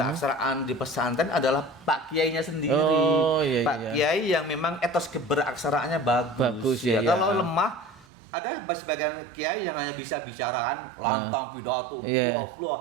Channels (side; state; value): left; drops out; at 8.1 s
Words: di pesantren adalah Pak Kiainya sendiri. Pak Kiai yang memang etos keberaksaraannya bagus. Kalau lemah, ada sebagian kiai yang hanya bisa bicaraan lantang pidato,